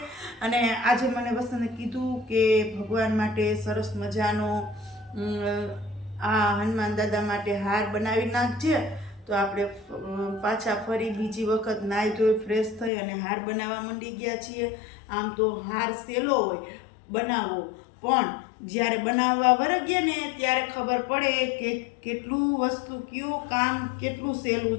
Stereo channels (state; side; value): drops out; right; at 12.9 s